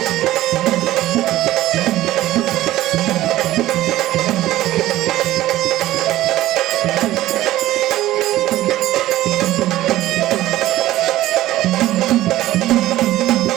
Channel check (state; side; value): quieter; left; 15.2 dB